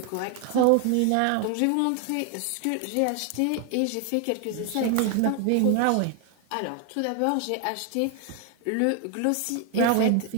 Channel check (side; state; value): both; different; correlation 0.01